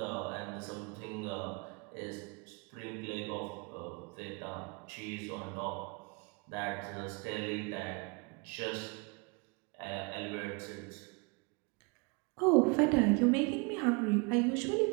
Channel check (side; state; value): left; quieter; 30.7 dB